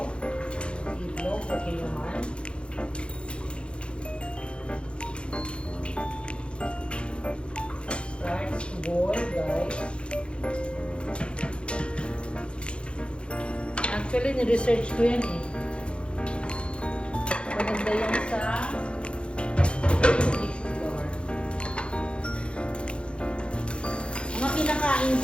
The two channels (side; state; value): right; late; 0.057 ms